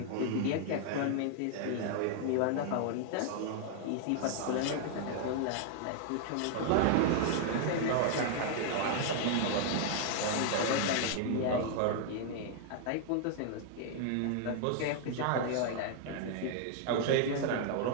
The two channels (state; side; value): different; both; correlation 0.00